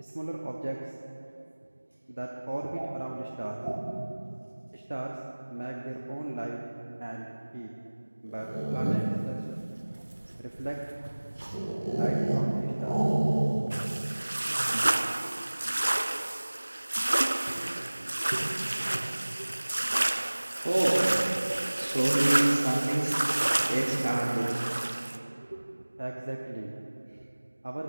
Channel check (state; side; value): inverted; both; correlation -1.00